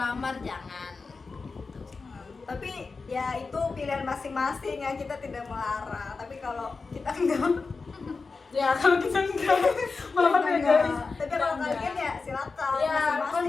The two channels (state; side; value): quieter; right; 4.3 dB